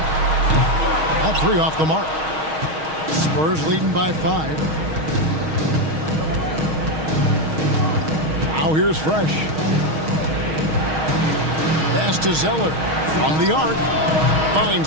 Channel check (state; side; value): late; left; 6.4 ms